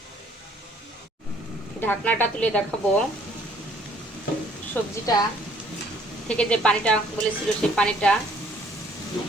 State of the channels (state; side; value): normal; both; correlation 0.60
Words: ঢাকনাটা তুলে দেখাবো সবজিটা থেকে যে পানিটা বলেছিল সেই পানিটা